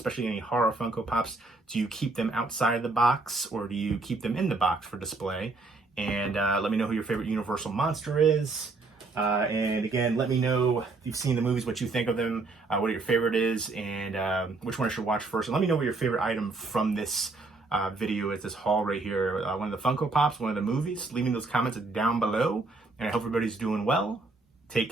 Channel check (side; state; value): left; quieter; 3.5 dB